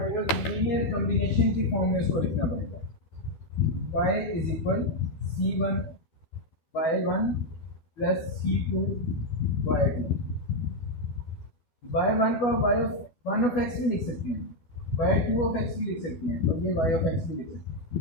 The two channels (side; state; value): right; late; 12 ms